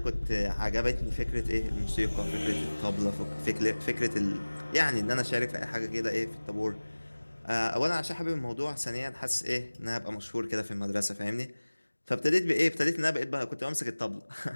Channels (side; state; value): both; inverted; correlation -1.00